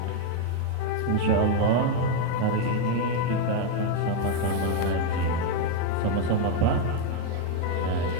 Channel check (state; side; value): different; both; correlation 0.01